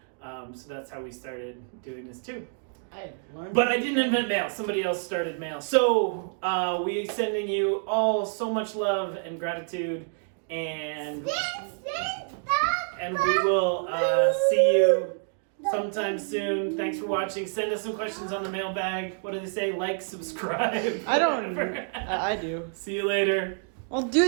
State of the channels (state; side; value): silent; left; 60 dB below the other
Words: So that's how we started doing this too. I learned. But I didn't invent mail. Somebody else started mail. So we sending you all so much love and gratitude, and we will see you sometime soon. Thanks for watching. Send us some questions on the mailbag. What do they say? Like, subscribe. I don't. whatever. I do. See you later. Well, do